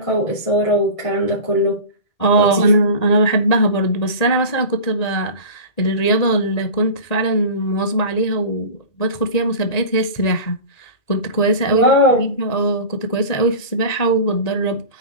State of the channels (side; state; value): right; late; 1.9 ms